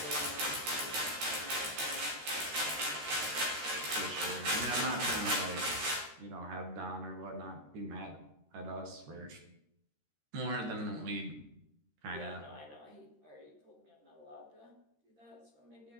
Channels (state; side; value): late; left; 13 ms